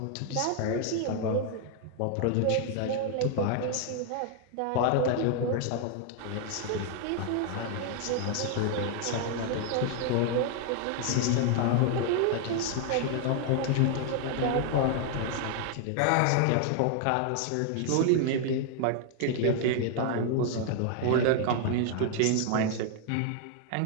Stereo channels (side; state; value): both; different; correlation 0.00